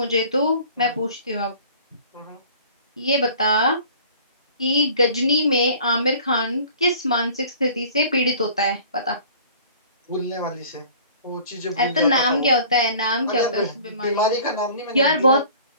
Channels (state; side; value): inverted; both; correlation -0.48